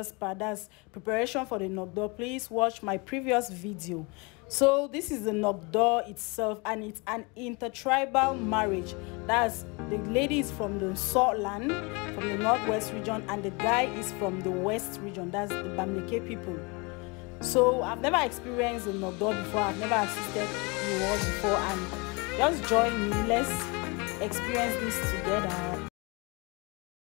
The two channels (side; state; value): right; quieter; 28.8 dB